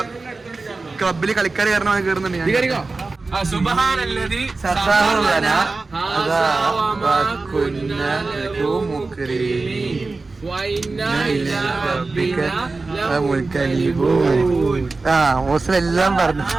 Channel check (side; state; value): left; quieter; 3.7 dB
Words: ക്ലബില് കളിക്കാർ കാരണം കയറുന്നുണ്ട്. എല്ലാം പറഞ്ഞു.